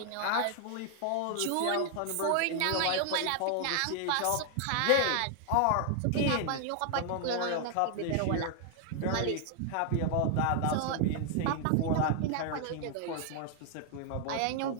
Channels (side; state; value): both; different; correlation 0.00